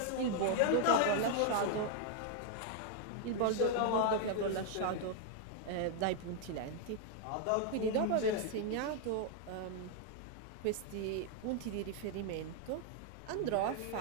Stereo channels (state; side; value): different; both; correlation 0.00